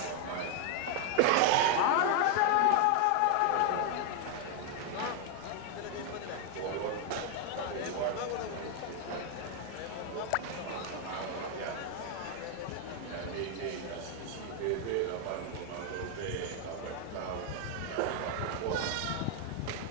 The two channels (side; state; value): both; different; correlation 0.00